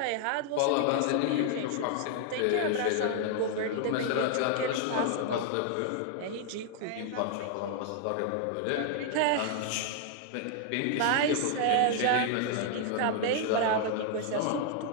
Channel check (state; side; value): different; both; correlation 0.00